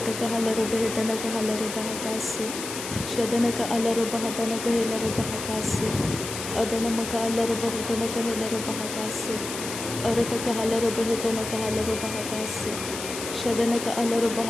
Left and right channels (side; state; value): left; noise; hiss, 7 dB below the sound